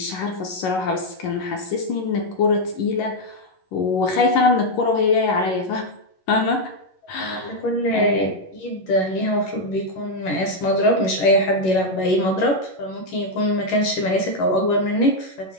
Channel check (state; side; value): late; right; 11 ms